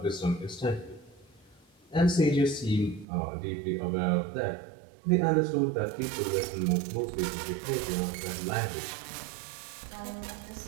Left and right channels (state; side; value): drops out; left; at 3.1 s